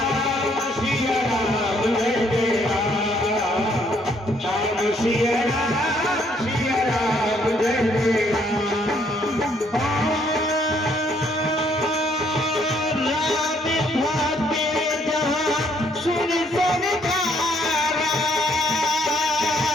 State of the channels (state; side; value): normal; both; correlation 0.68